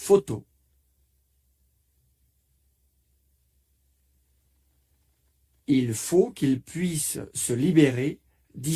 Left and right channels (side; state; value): both; identical; correlation 1.00